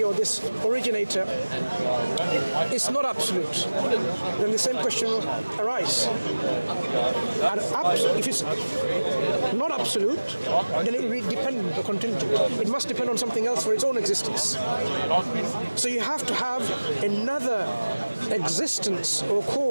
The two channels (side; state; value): both; inverted; correlation -1.00